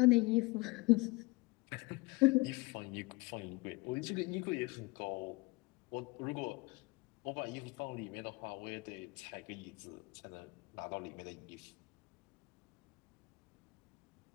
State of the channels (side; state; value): right; quieter; 24.4 dB